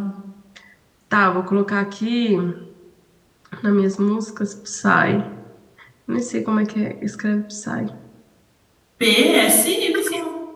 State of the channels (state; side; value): identical; both; correlation 1.00